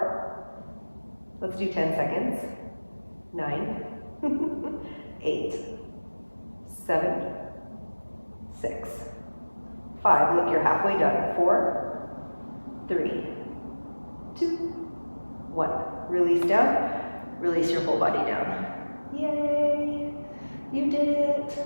Let's do 10 seconds. 9, 8, 7, 6, 5. Look, you're halfway done. 4, 3, 2, 1. Release down. Release your whole body down. Yay! You did it.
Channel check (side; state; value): both; inverted; correlation -1.00